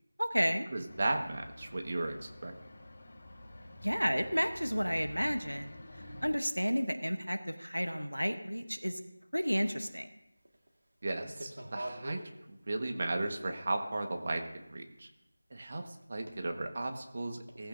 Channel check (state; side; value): inverted; both; correlation -0.98